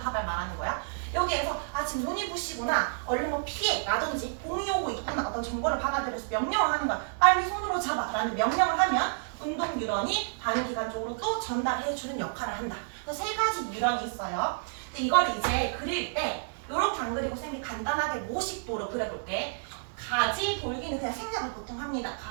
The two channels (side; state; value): left; silent; digital silence